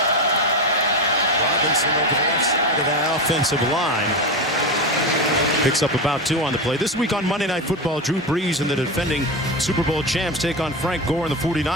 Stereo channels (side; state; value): both; normal; correlation 0.18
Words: Robinson over the left side of that offensive line. Picks up about 2 on the play. This week on Monday Night Football, Drew Brees and the defending Super Bowl champs take on Frank Gore and the